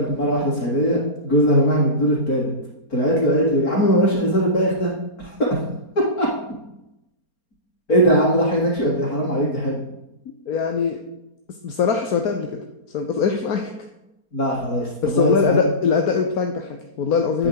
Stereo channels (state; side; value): late; right; 4.3 ms